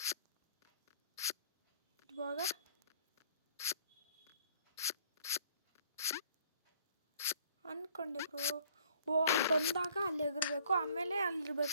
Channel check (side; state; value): both; inverted; correlation -0.57